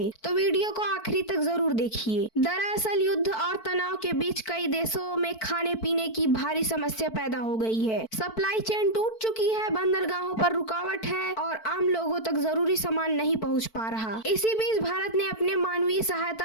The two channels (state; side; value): late; right; 4.5 ms